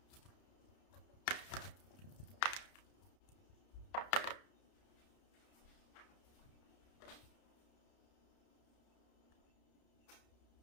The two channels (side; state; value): right; late; 31 ms